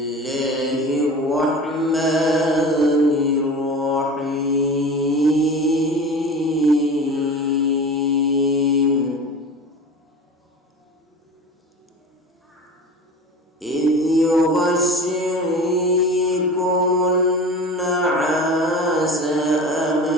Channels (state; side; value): normal; both; correlation 0.35